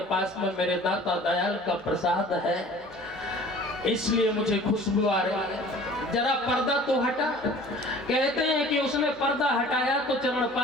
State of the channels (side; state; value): both; normal; correlation 0.47